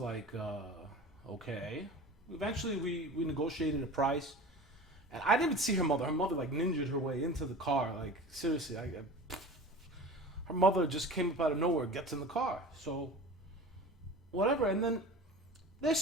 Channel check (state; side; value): normal; both; correlation 0.36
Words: okay. Eventually we negotiated a price, and I didn't even see her mother. Her mother like ninjaed her way into the car. Like seriously, her mother just came up out of nowhere, gets in the car. So whatever, and then they're